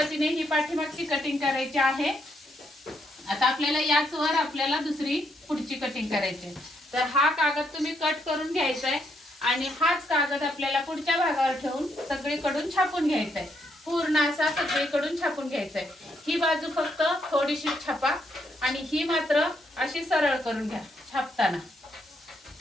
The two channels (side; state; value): both; normal; correlation 0.76